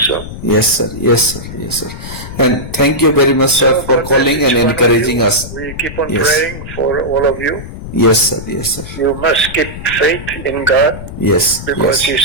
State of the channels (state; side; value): noise; left; rumble, 11 dB below the sound